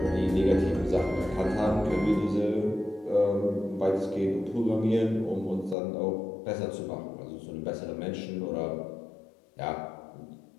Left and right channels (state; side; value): drops out; right; at 5.8 s